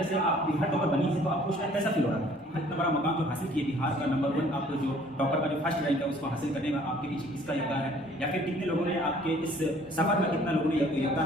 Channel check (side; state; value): both; normal; correlation 0.56